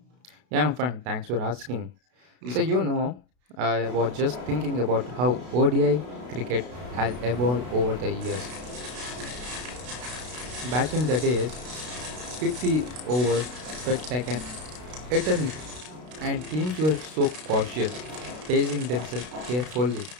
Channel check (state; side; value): late; left; 32 ms